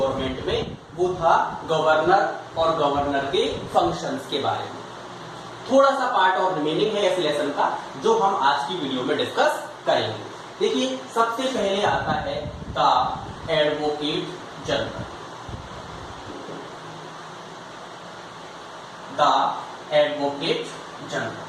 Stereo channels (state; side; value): identical; both; correlation 1.00